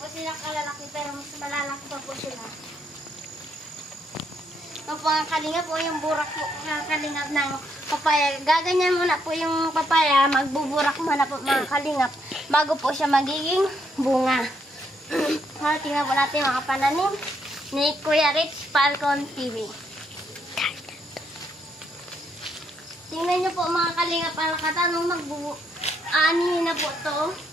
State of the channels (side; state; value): both; normal; correlation 0.75